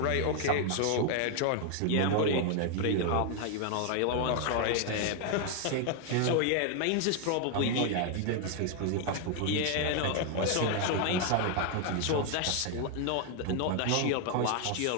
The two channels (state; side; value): different; both; correlation 0.00